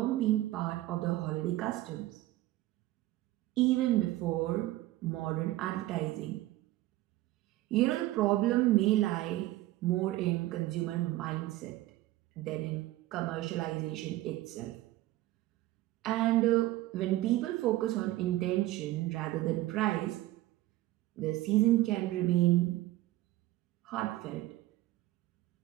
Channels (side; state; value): left; quieter; 16.5 dB